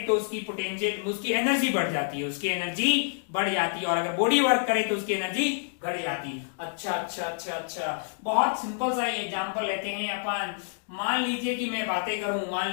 तो उसकी पोटेंशियल, उसकी एनर्जी बढ़ जाती है, और अगर बॉडी वर्क करे तो उसकी एनर्जी घट जाती है। अच्छा, बहुत सिंपल सा एग्जांपल लेते हैं अपन। मान लीजिए कि मैं बातें करूं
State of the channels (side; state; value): right; silent; digital silence